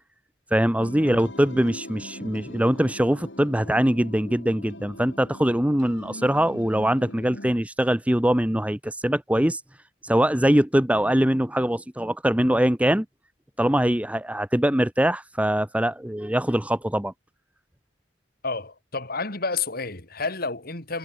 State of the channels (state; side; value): normal; both; correlation 0.91